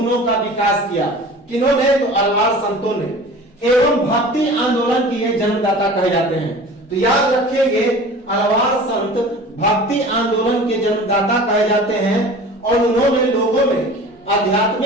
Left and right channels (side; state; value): both; normal; correlation 0.40